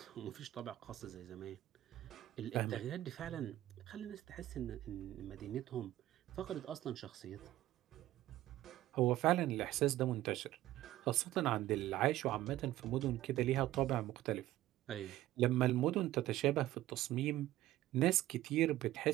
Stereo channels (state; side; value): quieter; left; 14.9 dB